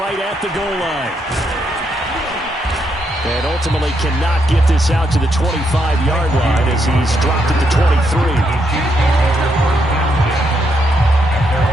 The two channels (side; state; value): both; normal; correlation 0.78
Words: at the goal line. And ultimately cannot get this out to the 25-yard line as he's dropped it to 23.